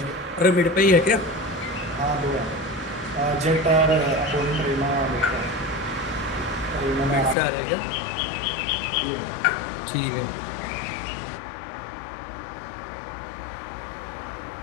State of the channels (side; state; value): right; drops out; at 7.4 s